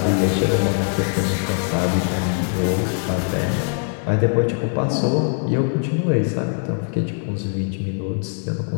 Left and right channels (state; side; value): silent; right; 55 dB below the other